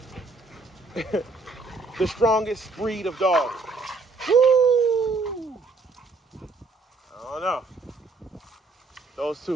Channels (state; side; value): quieter; left; 3.6 dB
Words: the strongest breed of dog. Woo! I don't know. Those